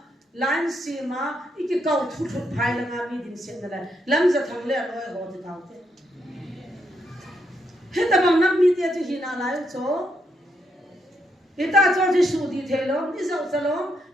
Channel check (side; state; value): both; normal; correlation 0.78